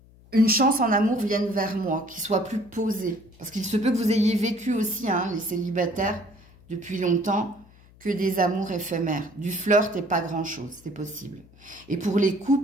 une chance en amour vienne vers moi, qui soit plus posée. Parce qu'il se peut que vous ayez vécu aussi, hein, les célibataires, depuis longtemps, que des amours éphémères. Du flirt et pas grand-chose, c'est possible. Et pour les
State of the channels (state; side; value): noise; left; hum, 26 dB below the sound